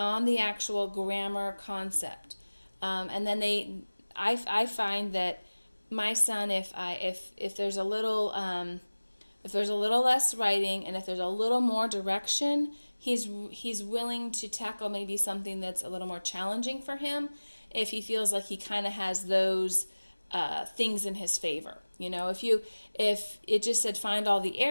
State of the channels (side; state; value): both; inverted; correlation -1.00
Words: the actual grammar concept. And then I find that my son, if there's a little less writing and if there's a little more direction, he's willing to tackle maybe something that's a little more challenging for him if he feels like he kind of has those things in his favor. If it just said find all the